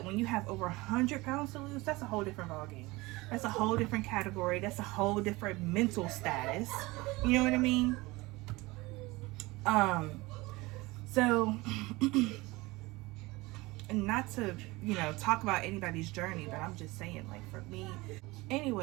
when you have over 100 pounds to lose, that's a whole different ballgame. That's a whole different category. That's a whole different mental status. You know what I mean? So, and not to, you know, talk about anybody's journey, but I'm just saying, like, for me.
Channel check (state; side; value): quieter; left; 22.0 dB